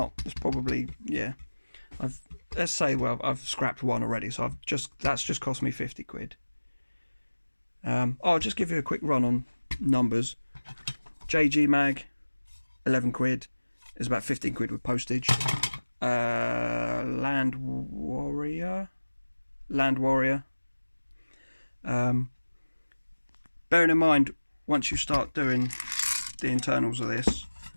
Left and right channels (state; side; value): inverted; both; correlation -1.00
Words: probably, yeah, let's say, well, I've scrapped one already, so that's just cost me 50 quid. I'll just give you a quick run on numbers. JG mag, 11 quid, is about 15 quid with postage. Land Warrior. Bearing in mind, once you start doing the internals of this,